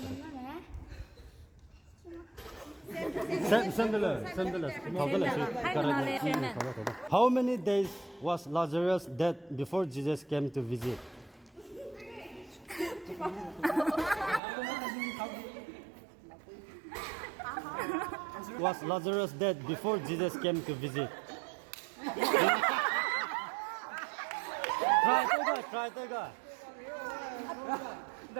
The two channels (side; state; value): left; drops out; at 14.4 s